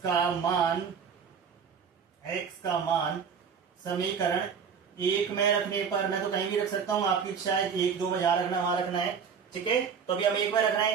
का मान समीकरण 1 में रखने पर, मैं तो कहीं भी रख सकता हूं, आपकी इच्छा है 1 2 में जहां रखना वहां रखना है। ठीक है, तो अभी हम 1 में रखना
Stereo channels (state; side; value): quieter; left; 6.6 dB